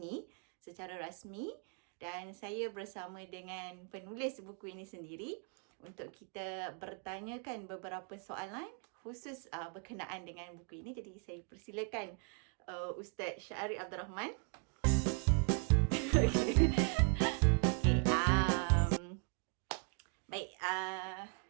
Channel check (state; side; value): quieter; left; 39.4 dB